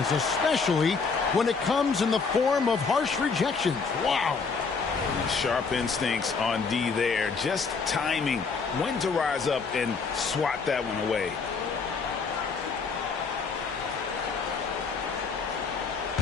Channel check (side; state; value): right; quieter; 5.0 dB